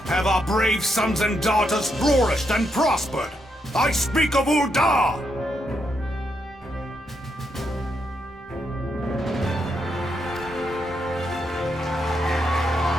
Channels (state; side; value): normal; both; correlation 0.80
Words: have our brave sons and daughters flourished and prospered. I speak of Ul'dah!